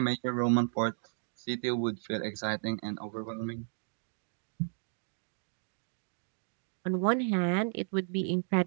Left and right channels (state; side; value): silent; left; digital silence